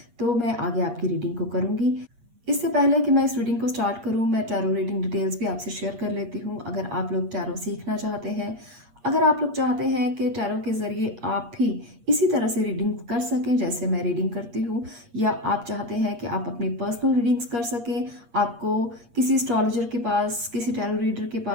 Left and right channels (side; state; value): left; late; 8.5 ms